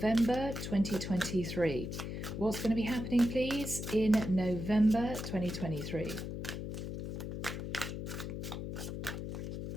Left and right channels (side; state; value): left; noise; hum, 6 dB below the sound